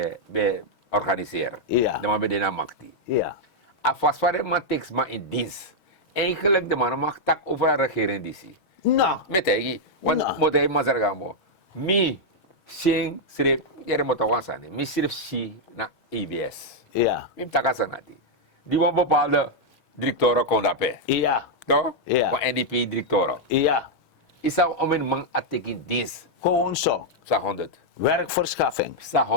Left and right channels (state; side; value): late; right; 6.3 ms